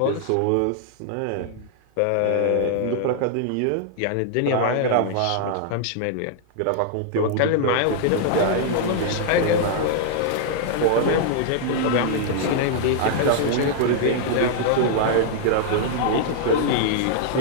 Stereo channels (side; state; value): both; different; correlation -0.01